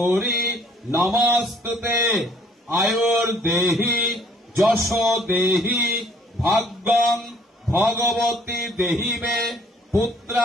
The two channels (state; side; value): normal; both; correlation 0.59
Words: নমস্তুতে আয়ুর্দেহি যশ দেহি ভাগ্যং ভগবতী দেহি মে